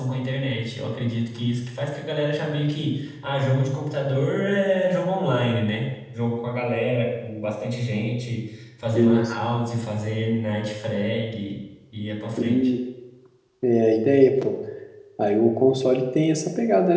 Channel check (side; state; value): both; identical; correlation 1.00